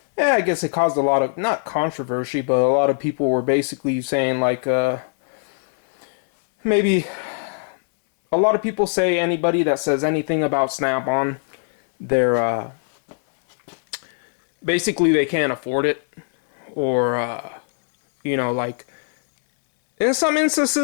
I guess it caused a lot of, not controversy, but a lot of people were basically saying, like, maybe a lot of people say anybody that says anything about Snap-on, they're, basically they can't afford it, or, like, in some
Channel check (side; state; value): right; silent; 62 dB below the other